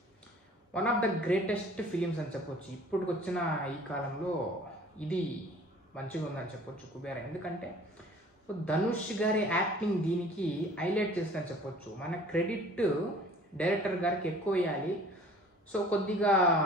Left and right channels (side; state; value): both; normal; correlation 0.49